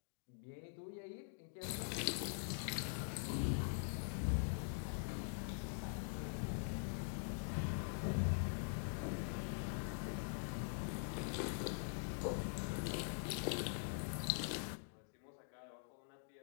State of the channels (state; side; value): silent; right; digital silence